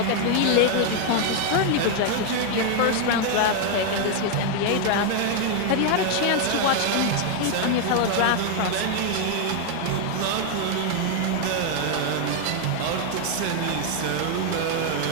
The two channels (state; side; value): different; both; correlation 0.00